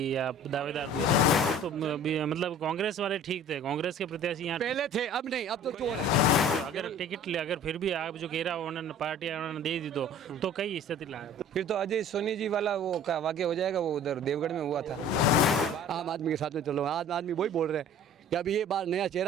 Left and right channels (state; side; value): normal; both; correlation 0.47